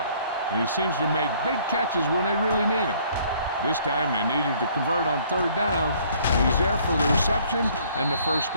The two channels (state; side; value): inverted; both; correlation -0.60